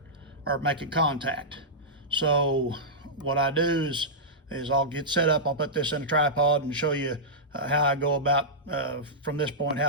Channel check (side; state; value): both; normal; correlation -0.12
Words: or making contact. So what I do is I'll get set up, I'll put this in a tripod and show you how I go about, from this point,